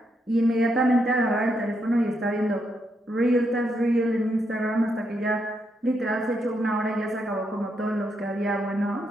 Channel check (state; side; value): normal; both; correlation 0.80